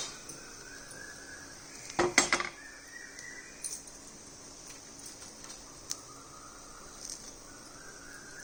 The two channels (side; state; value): both; identical; correlation 1.00